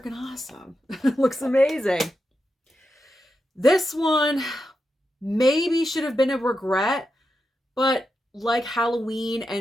awesome. Looks amazing. This one maybe should have been a regret, but like Halloween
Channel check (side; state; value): both; normal; correlation 0.87